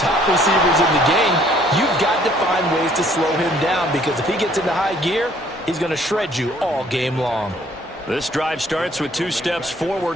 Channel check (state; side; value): normal; both; correlation 0.61